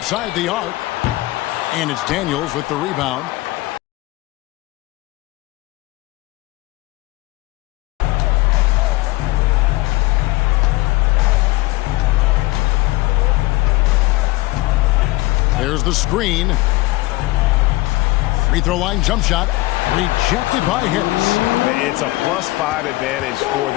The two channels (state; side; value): quieter; right; 20.4 dB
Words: the arc. And it's Daniels with the rebound. There's the screen. Free throw line jump shot. Rejected by Harris. It's a +5 advantage for